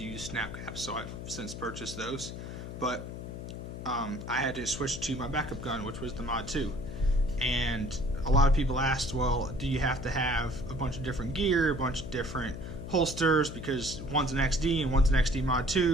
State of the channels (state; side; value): noise; left; hum, 9 dB below the sound